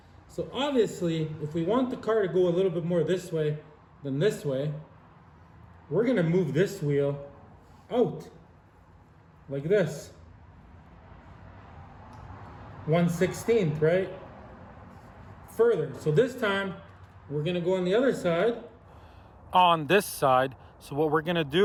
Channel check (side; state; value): both; identical; correlation 1.00